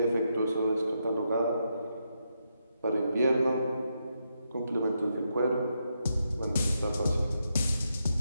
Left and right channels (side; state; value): both; inverted; correlation -0.82